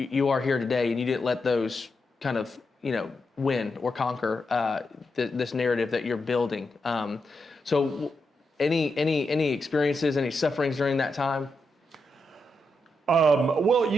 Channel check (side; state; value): both; normal; correlation 0.85